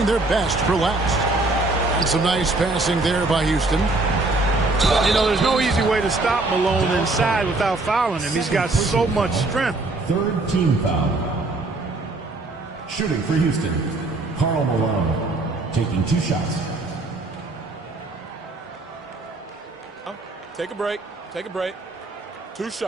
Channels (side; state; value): left; quieter; 3.1 dB